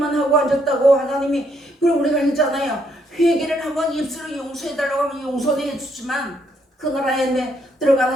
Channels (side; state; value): both; normal; correlation 0.72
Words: 하고 앉았다고 하나님이, 그럼 우리가 했잖아요. 회개를 한번 입술로 용서해달라고 하면 용서는 해주지만 그 나라에